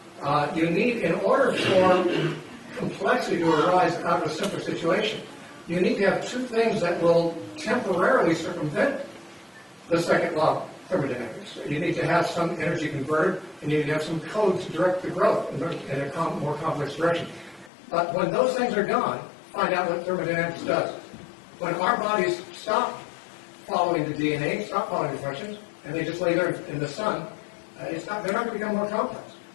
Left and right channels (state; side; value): drops out; right; at 17.7 s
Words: You need, in order for complexity to arise out of a simple situation, you need to have two things that will temporarily circumvent the second law of thermodynamics. You need to have some energy converted, and you need to have some code to direct the growth in a more complex direction. But when those things are gone, find out what thermodynamics does. When our bodies stop following the DNA, stop following the instructions, and they just lay there in the sun, they're not going to become more complex.